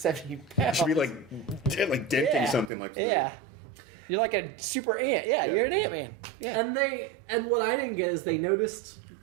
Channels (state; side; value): drops out; left; at 2.7 s